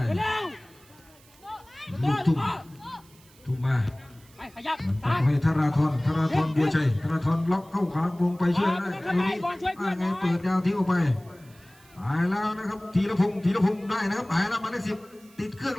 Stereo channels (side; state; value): right; noise; hiss, 27 dB below the sound